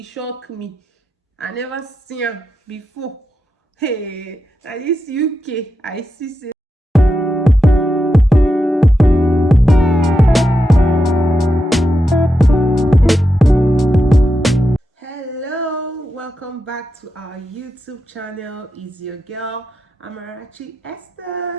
shocked me. I never seen am before. Hey, na this UK I see say. Hello, welcome back to our YouTube channel. Is your girl Amarachi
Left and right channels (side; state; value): both; normal; correlation 0.87